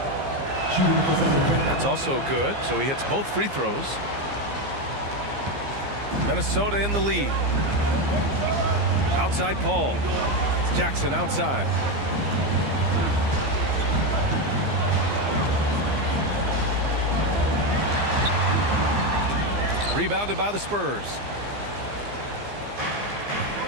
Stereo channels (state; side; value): late; left; 15 ms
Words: That's also good. So he hits both free throws. Minnesota in the lead. Outside Paul. Jackson outside. Rebounded by the Spurs.